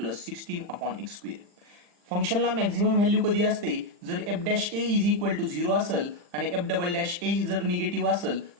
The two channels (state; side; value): late; left; 40 ms